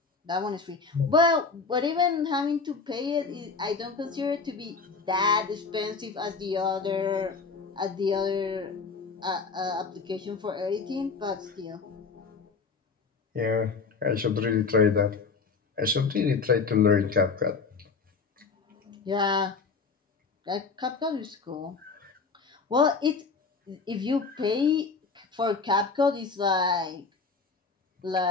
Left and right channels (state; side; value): quieter; right; 4.6 dB